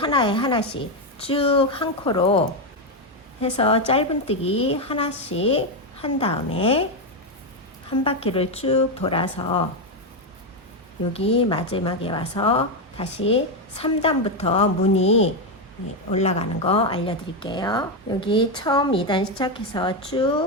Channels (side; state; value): both; normal; correlation 0.06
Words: 하나씩 쭉 한 코로 해서 짧은뜨기 하나씩 한 다음에 한 바퀴를 쭉 돌아서 여기 마지막에 와서 다시 3단부터 무늬 올라가는 거 알려드릴게요. 여기 처음 2단 시작해서